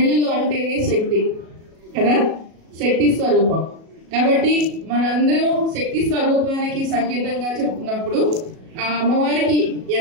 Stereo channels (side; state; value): left; late; 37 ms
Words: అంటేనే శక్తి కదా, శక్తి స్వరూపం. కాబట్టి మనందరం శక్తి స్వరూపానికి సంకేతంగా చెప్తున్నప్పుడు ఆ అమ్మవారికి